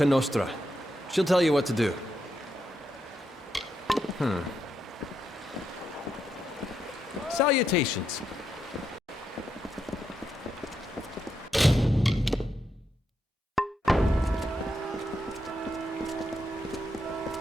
Nostra. She'll tell you what to do. Salutations.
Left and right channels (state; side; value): normal; both; correlation 0.82